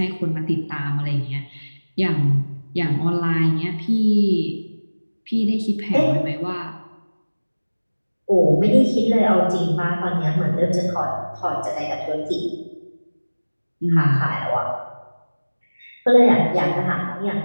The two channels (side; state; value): both; inverted; correlation -1.00